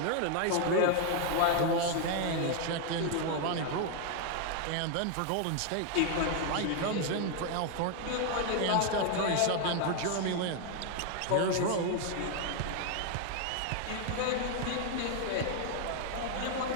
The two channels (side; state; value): both; different; correlation 0.00